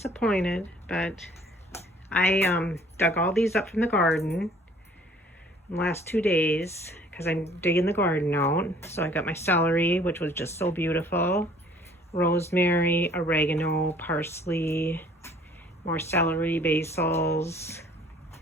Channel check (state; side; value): normal; both; correlation 0.55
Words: but I dug all these up from the garden in the last 2 days because I'm digging the garden out. So I got my celery, which was just so beautiful, rosemary, oregano, parsley, more celery, basils,